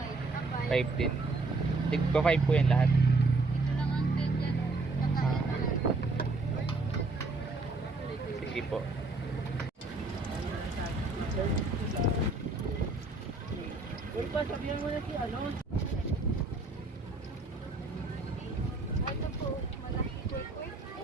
5. 5 din. Tigpa 5 po yan lahat. Ito lang ang peg dyan. Sige po. Ulpa, sabihan mo na si ano? Ito po, malaki Kwek.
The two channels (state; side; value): quieter; left; 3.3 dB